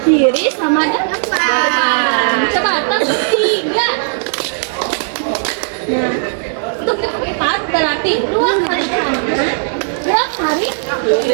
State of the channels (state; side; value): silent; left; digital silence